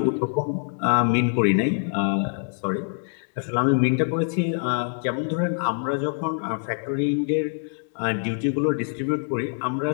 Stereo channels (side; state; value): right; silent; digital silence